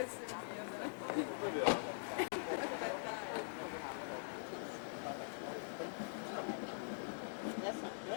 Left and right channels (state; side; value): silent; right; digital silence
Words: è il mio, Vediamo. Aspetta. That's